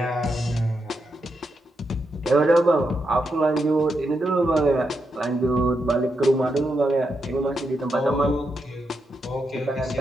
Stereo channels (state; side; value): normal; both; correlation 0.84